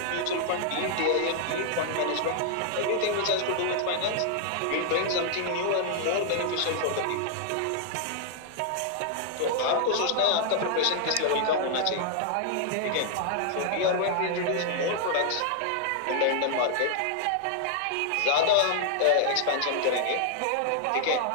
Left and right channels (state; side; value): different; both; correlation -0.01